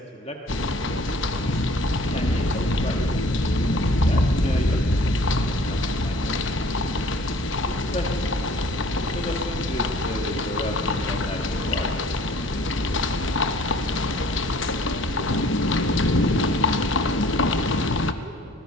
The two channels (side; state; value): both; normal; correlation 0.53